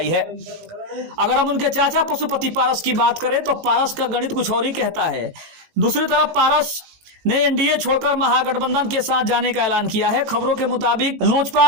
है। अगर हम उनके चाचा पशुपति पारस की बात करें तो पारस का गणित कुछ और ही कहता है। दूसरी तरफ पारस ने एनडीए छोड़कर महागठबंधन के साथ जाने का ऐलान किया है। खबरों के मुताबिक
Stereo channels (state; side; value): late; left; 18 ms